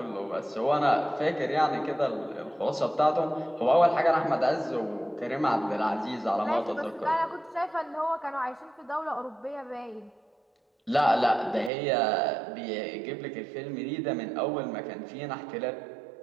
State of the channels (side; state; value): left; drops out; at 11.7 s